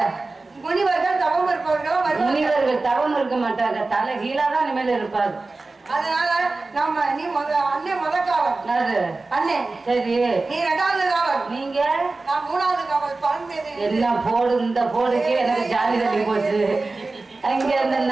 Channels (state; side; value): quieter; left; 3.5 dB